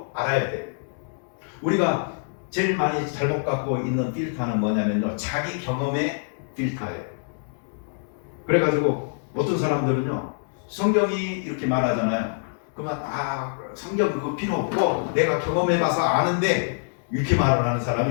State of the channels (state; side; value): silent; right; digital silence